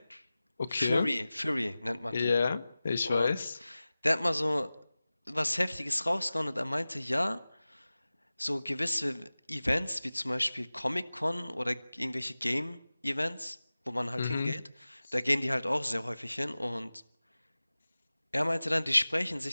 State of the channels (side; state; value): both; inverted; correlation -0.97